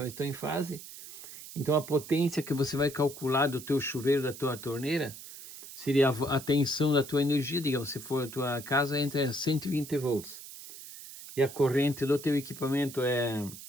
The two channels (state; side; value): noise; right; hiss, 14 dB below the sound